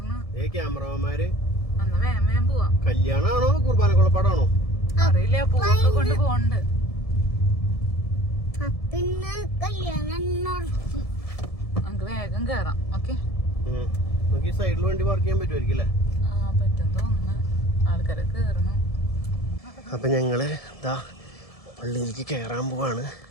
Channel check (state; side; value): late; right; 1.7 ms